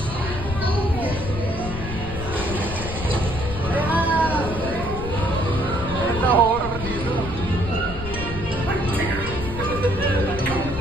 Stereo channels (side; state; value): left; noise; rumble, 7 dB below the sound